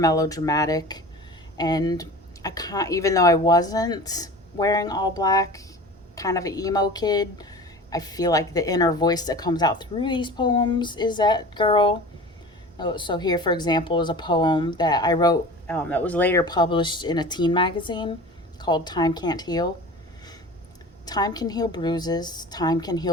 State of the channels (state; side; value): normal; both; correlation 0.37